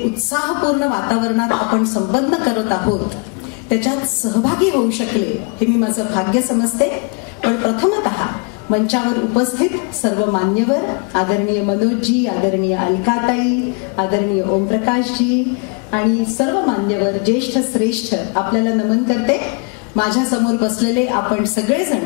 उत्साहपूर्ण वातावरणात आपण संपन्न करत आहोत त्याच्यात सहभागी होऊ शकले हे मी माझं भाग्य समजते. पण प्रथमतः मंचावर उपस्थित सर्व मान्यवर, आदरणीय मनोजजी, आदरणीय अलकाताई, आदरणीय ओमप्रकाशजी आणि सर्व मान्यवर, ज्येष्ठ श्रेष्ठ आपल्याला नमन करते. माझ्या समोर बसलेले आपण सगळेजण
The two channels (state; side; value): quieter; right; 34.4 dB